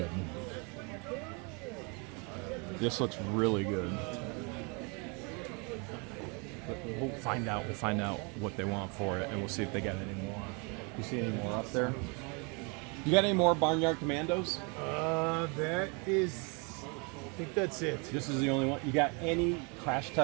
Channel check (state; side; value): quieter; left; 32.7 dB